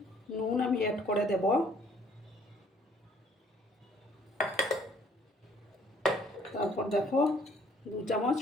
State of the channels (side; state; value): both; normal; correlation 0.60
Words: নুন আমি অ্যাড করে দেব। তারপর দেখো 2 চামচ